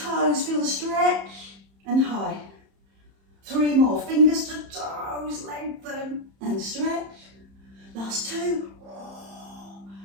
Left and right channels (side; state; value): left; late; 31 ms